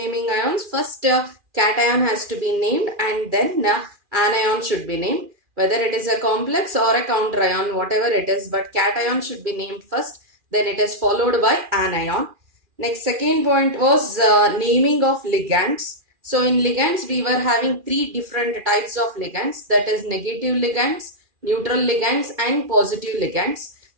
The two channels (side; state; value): left; late; 2.4 ms